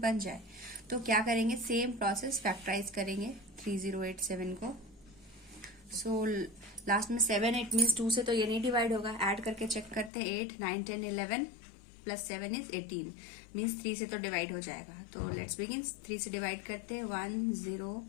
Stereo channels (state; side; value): drops out; right; at 10.1 s